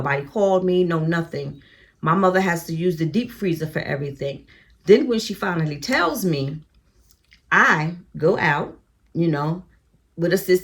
called me, no nothing. My mother has to use the deep freezer for everything. Then when she finally tells me, I go out, with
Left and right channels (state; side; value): identical; both; correlation 1.00